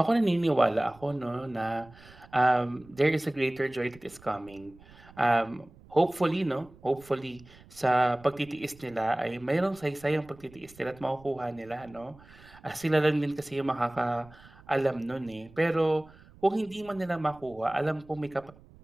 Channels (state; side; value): noise; right; rumble, 23 dB below the sound